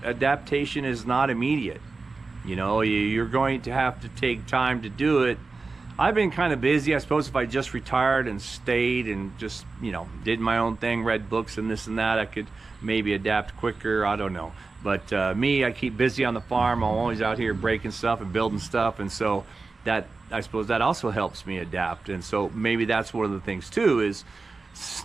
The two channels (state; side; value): quieter; left; 3.9 dB